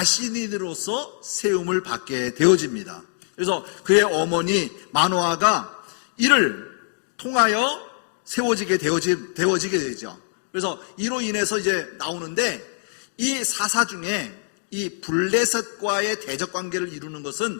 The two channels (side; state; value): right; silent; 57 dB below the other